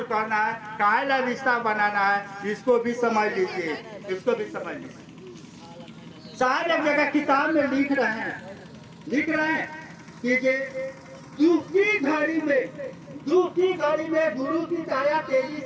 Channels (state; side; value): identical; both; correlation 1.00